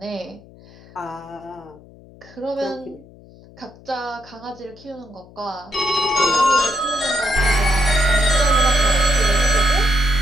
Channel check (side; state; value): left; noise; hum, 23 dB below the sound